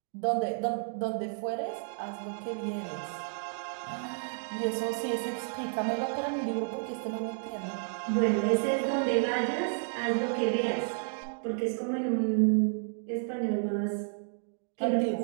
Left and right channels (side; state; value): left; silent; digital silence